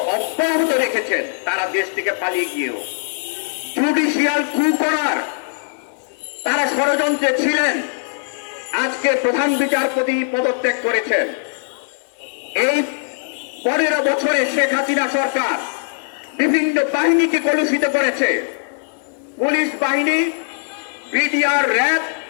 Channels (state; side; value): silent; right; digital silence